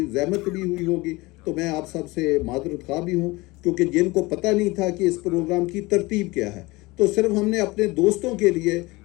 जहमत भी हुई होगी। तो मैं आप सब से माज़रत ख़्वाह भी हूँ, क्योंकि जिनको पता नहीं था कि इस प्रोग्राम की तरतीब क्या है। तो सिर्फ हमने अपने दोस्तों के लिए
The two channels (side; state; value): right; quieter; 22.3 dB